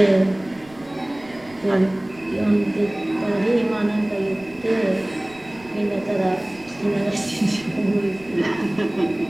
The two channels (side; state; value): right; noise; rumble, 24 dB below the sound